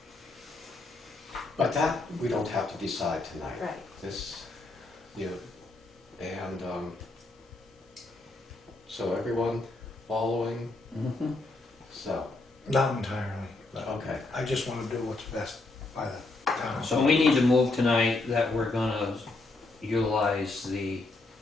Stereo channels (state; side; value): quieter; right; 3.2 dB